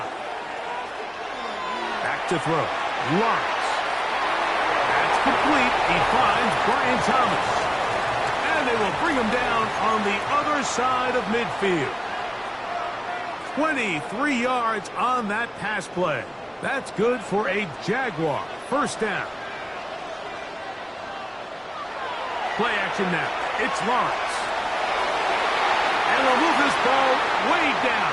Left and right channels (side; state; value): both; identical; correlation 1.00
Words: Back to throw. Lawrence. That's complete. He finds Brian Thomas. And they will bring him down on the other side of midfield. 23 yards on that pass play. That's good for a Jaguar. First down. Play action now. It's Lawrence. And they'll move this ball way down